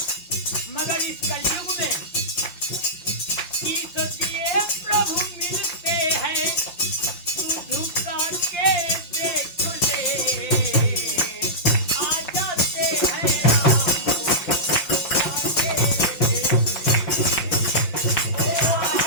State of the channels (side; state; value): right; late; 5.7 ms